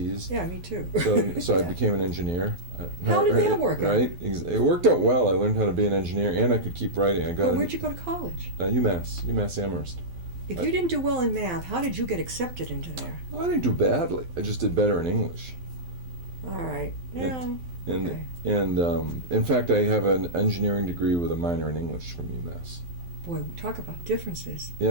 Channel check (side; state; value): left; late; 12 ms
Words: Yeah, me too. So I Yeah. became an engineer. How did that work out? Right, it worked out well. I learned how to be an engineer, and I could keep writing. I got But where'd you go to college? UMass Amherst. If you didn't do well in math, how did you get accepted into there? Well, I didn't do badly. I just did better in English. All right. Yeah. No. And Okay. in fact, I have an engineering degree with a minor in English from UMass. Boy, talk about differences.